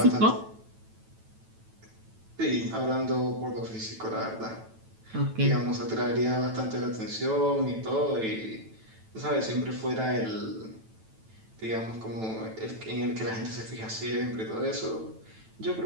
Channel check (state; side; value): late; left; 9.1 ms